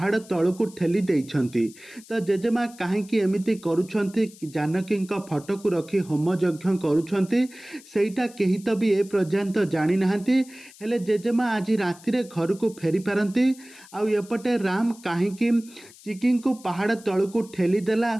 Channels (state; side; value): noise; left; hiss, 22 dB below the sound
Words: तल को ठेली देइछंती। तो जेजेमा कहीं एमती करुछंती जानकी फटो को रखी होम यज्ञ करुछंती सेटा कही तो भी ए पर्यंत जानी नाहंती। हेले जेजेमा आज राति घर को फेरी पारती आउपटे राम कहीं चिकी को पहाड़ तल को ठेली देला।